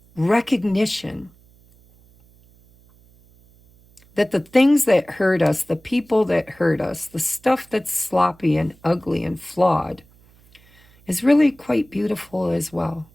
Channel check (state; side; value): noise; right; hum, 29 dB below the sound